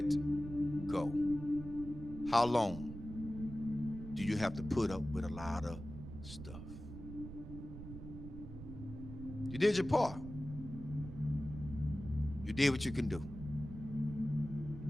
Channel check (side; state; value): right; noise; rumble, 11 dB below the sound